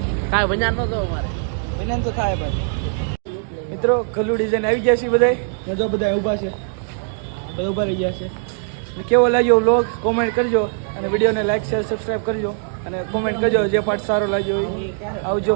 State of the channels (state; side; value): silent; left; digital silence